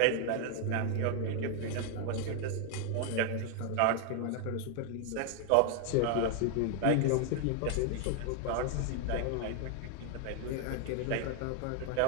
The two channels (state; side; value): different; both; correlation 0.00